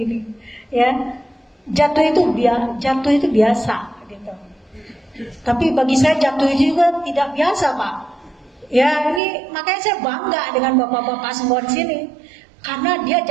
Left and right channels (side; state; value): left; drops out; at 9.2 s